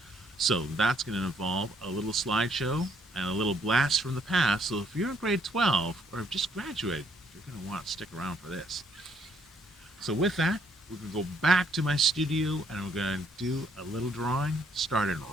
So that's going to involve a little slideshow and a little blast from the past. So if you're in grade 12 or have just graduated, you're going to want to stick around for this. So with that, we're going to go back to my studio and we're going to do a little drawing starting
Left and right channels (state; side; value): normal; both; correlation 0.69